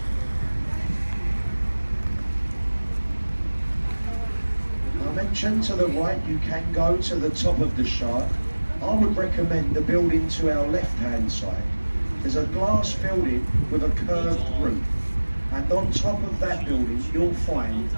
I mentioned to the right you can go to the top of the shard. I would recommend the building to our left-hand side. There's a glass building with a curved roof, and on top of that building you'll find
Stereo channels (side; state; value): both; inverted; correlation -1.00